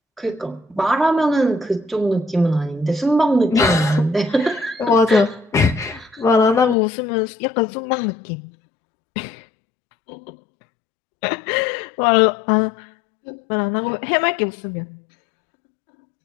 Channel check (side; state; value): right; drops out; at 6.8 s